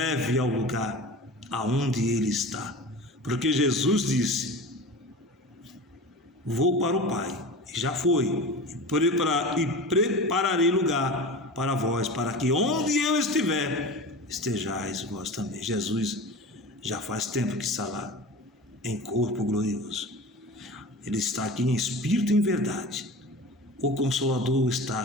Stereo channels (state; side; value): normal; both; correlation 0.33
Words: ao lugar aonde Ele está. Porque Jesus disse: vou para o Pai, e já foi, e prepararei lugar para vós, para que onde eu estiver, estejais vós também. Jesus já faz tempo que está lá, em corpo glorioso. Ele está aqui em espírito e em verdade. O Consolador